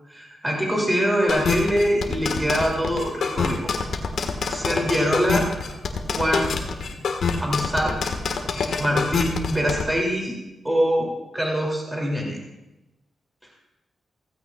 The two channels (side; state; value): both; normal; correlation 0.88